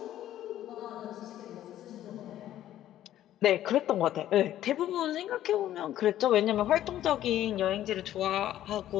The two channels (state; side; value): quieter; right; 12.5 dB